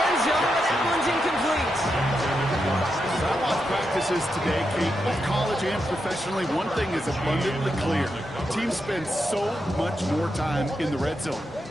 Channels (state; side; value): normal; both; correlation 0.85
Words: zone, but that one's incomplete. I watch practices today, Kate, both college and professionally. One thing is abundantly clear. Teams spend so much more time in the red zone.